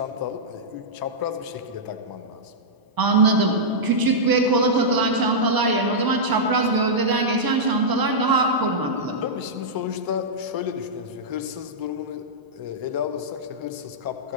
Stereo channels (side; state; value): left; late; 1.0 ms